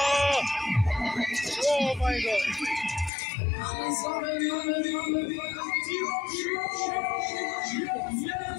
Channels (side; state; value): right; drops out; at 3.1 s